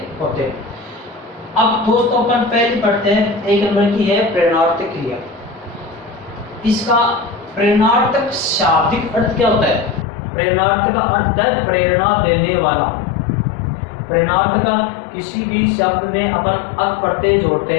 होते हैं। अब दोस्तों अपन पहले पढ़ते हैं, 1 नंबर की है प्रेरणार्थक क्रिया। इसका प्रेरणार्थक शाब्दिक अर्थ क्या होता है? प्रेरणार्थ का अर्थ है प्रेरणा देने वाला। प्रेरणार्थ का किसी भी शब्द में अपन अक प्रत्यय जोड़ते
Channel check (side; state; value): right; drops out; at 10.1 s